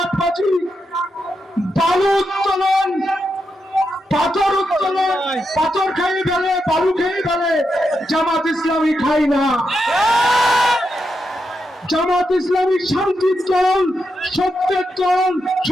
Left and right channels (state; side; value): normal; both; correlation 0.85